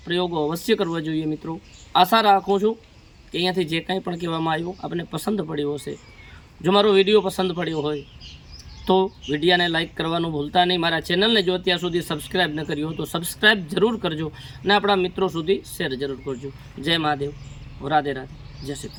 પ્રયોગો અવશ્ય કરવા જોઈએ મિત્રો. આશા રાખું છું કે અહીંયાથી જે કંઈ પણ કહેવામાં આવ્યું આપને પસંદ પડ્યો હશે. જો મારો વિડીયો પસંદ પડ્યો હોય તો વિડીયોને લાઇક કરવાનું ભૂલતા નહીં. મારા ચેનલને જો અત્યાર સુધી સબસ્ક્રાઈબ ન કર્યું હોય તો સબસ્ક્રાઈબ જરૂર કરજો અને આપણા મિત્રો સુધી શેર જરૂર કરજો. જય મહાદેવ, રાધે રાધે, જય શ્રી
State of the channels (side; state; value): both; identical; correlation 1.00